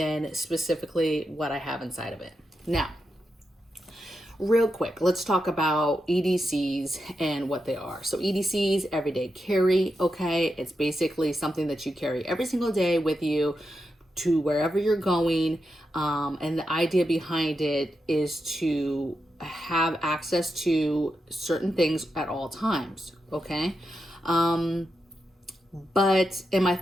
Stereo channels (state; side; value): normal; both; correlation 0.87